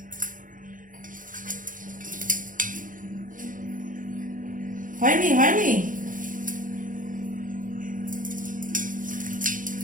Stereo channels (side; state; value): left; late; 0.39 ms